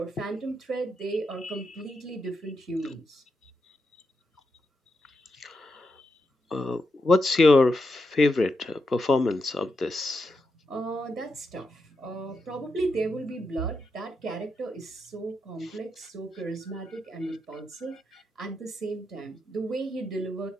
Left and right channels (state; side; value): normal; both; correlation 0.84